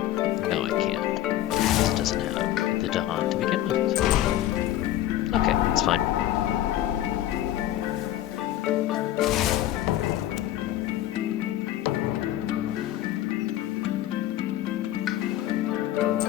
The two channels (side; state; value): right; quieter; 13.3 dB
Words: No, I can't. Because it doesn't have the Dahan to begin with. Okay, it's fine.